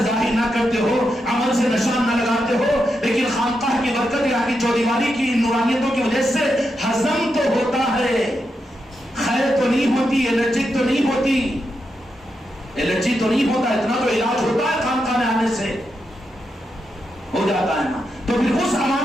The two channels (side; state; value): both; normal; correlation 0.85